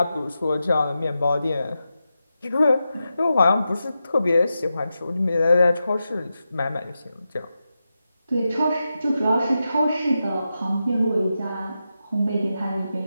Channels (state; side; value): inverted; both; correlation -0.89